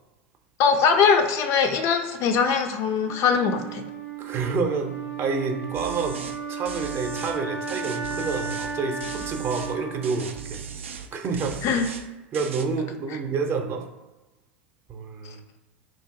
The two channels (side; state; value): both; normal; correlation 0.25